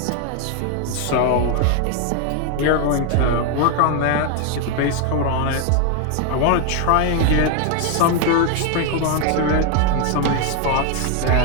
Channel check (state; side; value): different; both; correlation 0.01